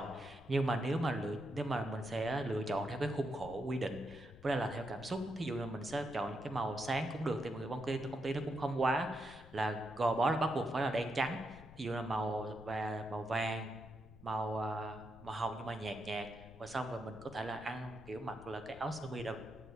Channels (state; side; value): noise; left; rumble, 19 dB below the sound